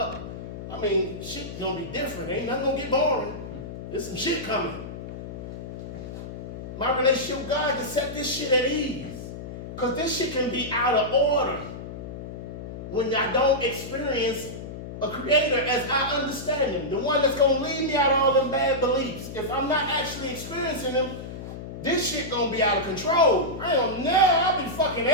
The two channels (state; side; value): noise; left; hum, 9 dB below the sound